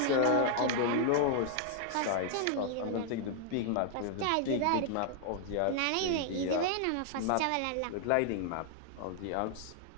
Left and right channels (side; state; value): both; different; correlation 0.00